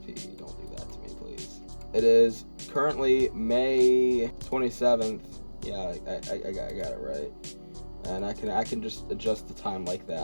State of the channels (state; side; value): inverted; both; correlation -1.00